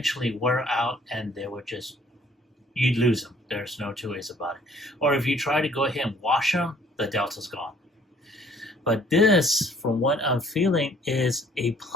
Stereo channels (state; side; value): normal; both; correlation 0.59